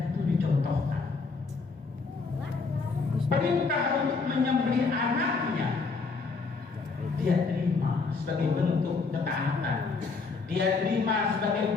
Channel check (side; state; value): right; quieter; 4.2 dB